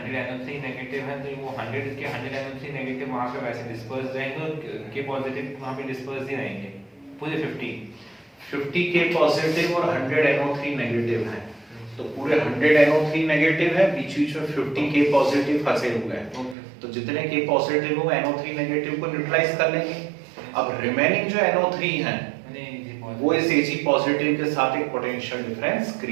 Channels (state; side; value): drops out; left; at 16.6 s